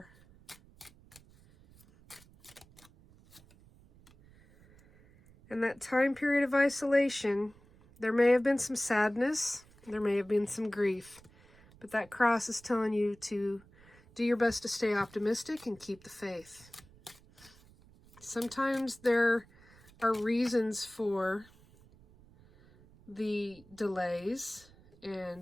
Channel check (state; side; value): noise; right; rumble, 26 dB below the sound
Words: In that time period of isolation, there may have been some sadness. There may have been some grief. But that cross is telling you to do your best to stay optimistic and keep the faith. Sometimes there are reasons for the delays